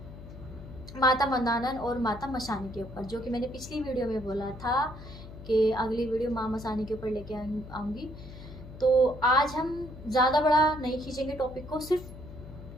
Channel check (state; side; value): noise; left; hum, 14 dB below the sound